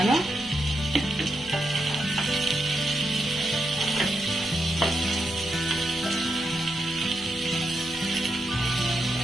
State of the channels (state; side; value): normal; both; correlation 0.84